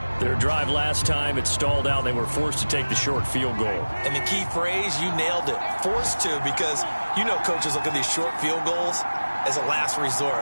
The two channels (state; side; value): inverted; both; correlation -1.00